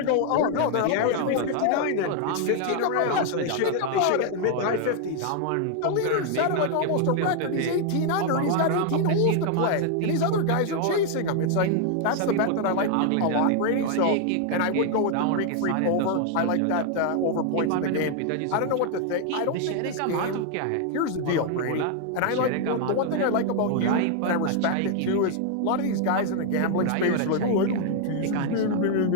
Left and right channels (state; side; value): different; both; correlation 0.00